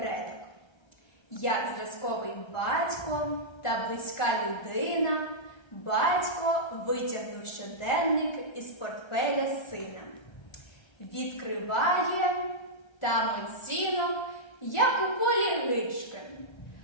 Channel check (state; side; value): late; right; 1.3 ms